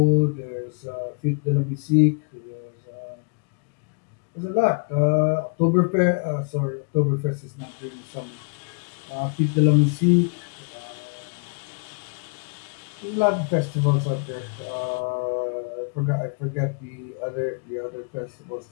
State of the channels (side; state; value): right; quieter; 38.4 dB